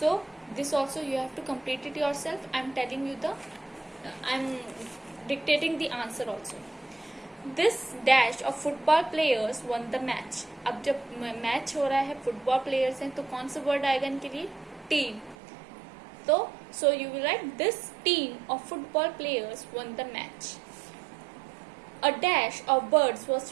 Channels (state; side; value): drops out; left; at 15.4 s